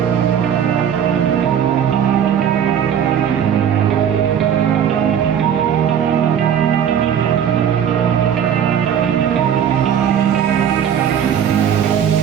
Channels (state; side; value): quieter; left; 8.8 dB